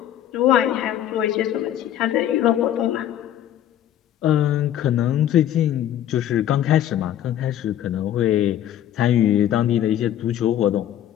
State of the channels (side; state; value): right; quieter; 11.4 dB